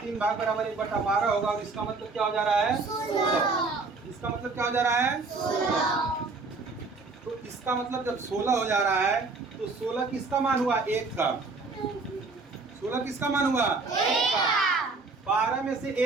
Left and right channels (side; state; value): left; quieter; 3.9 dB